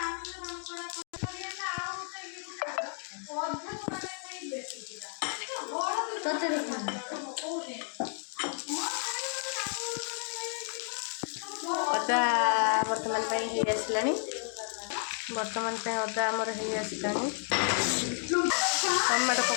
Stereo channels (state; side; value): silent; right; 56 dB below the other